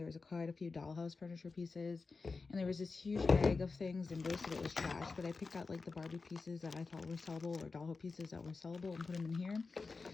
was quite a few dollhouse furniture pieces, and there was this huge bag of things, and most of it was trash, but I picked out like the Barbie pieces that I thought were sellable, or dollhouse pieces that were sellable, and put them in here.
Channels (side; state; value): right; quieter; 4.2 dB